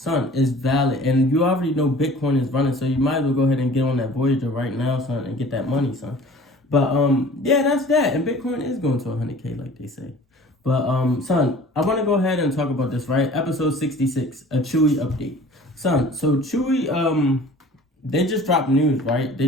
it's valid. And you already know Bitcoin is running, so you might as well go ahead and get on that Voyager right now, son, and get that money, son. But, yeah, that's that. And Bitcoin is going to 100K, like they say. But, son, I want to go ahead and talk about this, right? Episode 66, a Chewy update. Son, so Chewy, they just dropped news, right?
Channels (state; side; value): normal; both; correlation 0.46